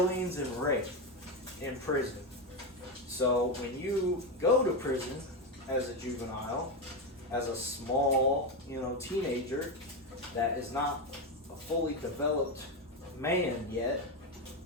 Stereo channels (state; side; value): normal; both; correlation 0.11